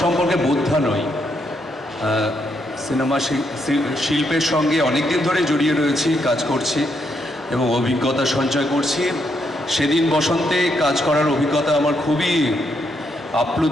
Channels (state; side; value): normal; both; correlation 0.78